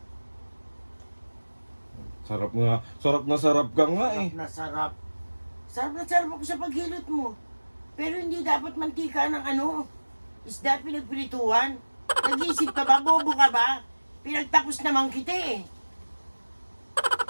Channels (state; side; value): inverted; both; correlation -1.00